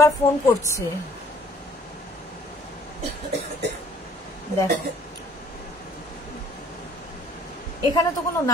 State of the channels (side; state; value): both; normal; correlation 0.56